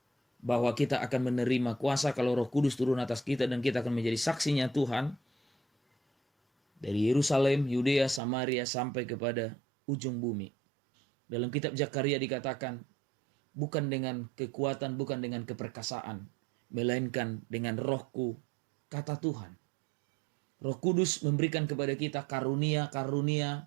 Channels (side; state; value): left; drops out; at 8.2 s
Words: bahwa kita akan menerima kuasa kalau Roh Kudus turun atas kita dan kita akan menjadi saksinya Tuhan dari Yerusalem, Yudea, Samaria sampai kepada ujung bumi. Dalam kitab Zakaria dikatakan bukan dengan kekuatan, bukan dengan keperkasaan, melainkan dengan Rohku, kata Tuhan. Roh Kudus memberikan kepada kita